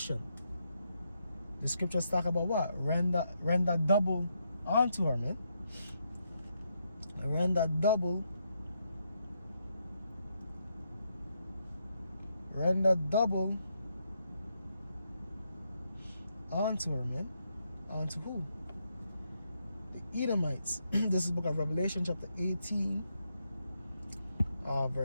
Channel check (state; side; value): inverted; both; correlation -0.80